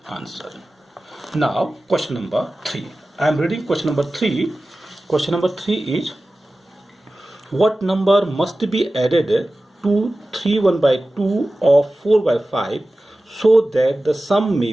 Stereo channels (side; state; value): both; normal; correlation 0.95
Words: answer. Now question number 3. I am reading question number 3. Question number 3 is, what number must be added to 3 1 by 2 of 4 by 5 so that the sum may